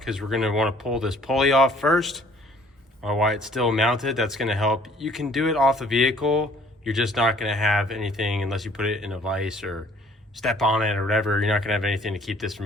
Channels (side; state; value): both; normal; correlation 0.57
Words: we're going to want to pull this pulley off first while it's still mounted. That's going to help. You can do it off the vehicle. You're just not going to have anything unless you put it in a vise or step on it or whatever. You're not going to have anything to keep this from